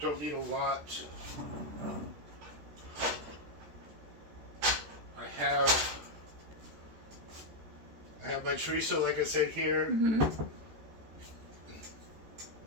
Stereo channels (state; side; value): late; left; 14 ms